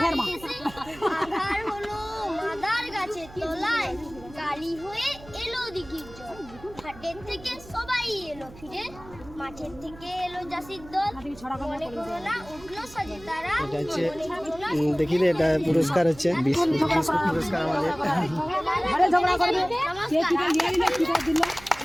খের মা আধার হলো মাদার গাছের তলায় গালি হয়ে এলো দিঘির জল হাটের থেকে সবাই এলো ফিরে মাঠের থেকে এলো জাসির দল মনে করো না উঠলো সাজে তারা এটা হচ্ছে দেখি রে এটা পুরস্কার হচ্ছে বিস্কুট পুরস্কার আমাদের আরে ঝগড়া করবে কে কি নিয়ে নিলে কি দিল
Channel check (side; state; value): right; noise; hum, 19 dB below the sound